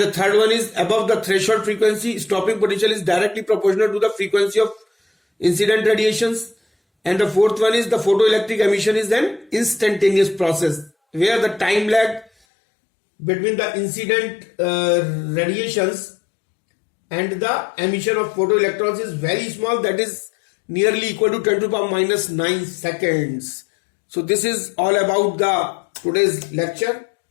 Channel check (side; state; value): right; drops out; at 12.3 s